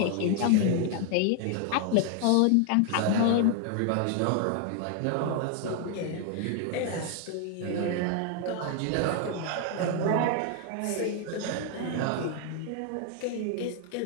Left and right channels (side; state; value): both; different; correlation 0.00